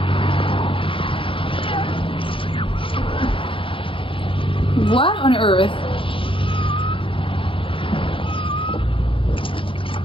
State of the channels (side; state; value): right; late; 0.25 ms